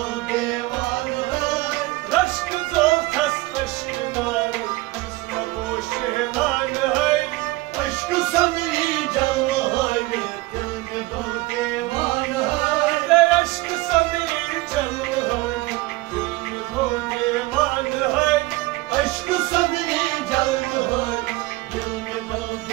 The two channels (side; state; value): left; quieter; 20.8 dB